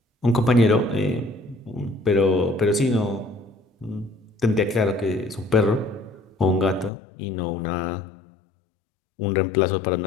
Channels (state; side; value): drops out; right; at 6.9 s